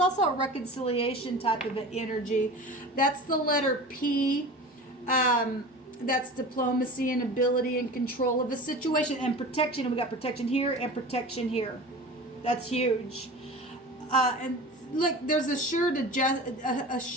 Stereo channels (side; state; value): both; normal; correlation 0.35